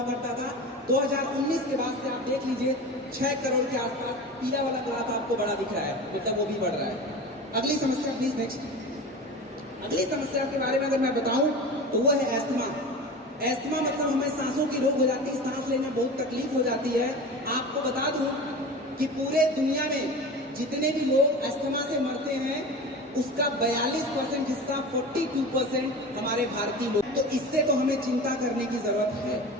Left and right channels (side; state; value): both; normal; correlation 0.32